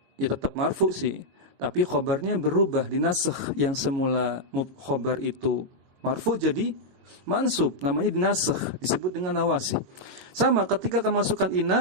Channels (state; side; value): late; left; 22 ms